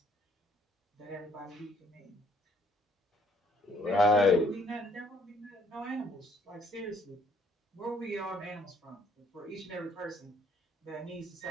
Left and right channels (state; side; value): normal; both; correlation 0.64